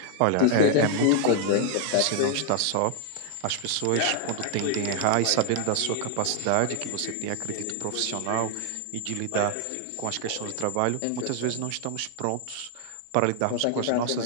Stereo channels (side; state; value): both; different; correlation 0.00